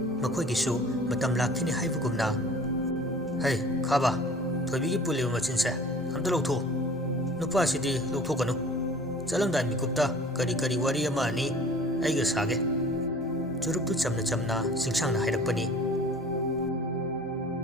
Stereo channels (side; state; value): both; normal; correlation 0.46